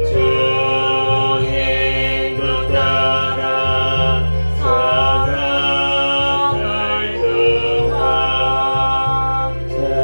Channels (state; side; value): inverted; both; correlation -1.00